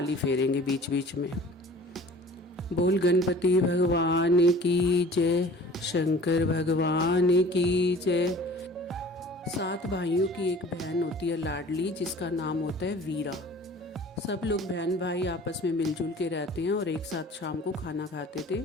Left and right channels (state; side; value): normal; both; correlation 0.46